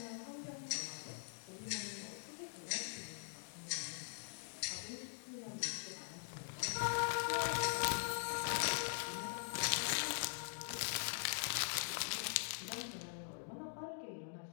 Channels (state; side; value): silent; right; digital silence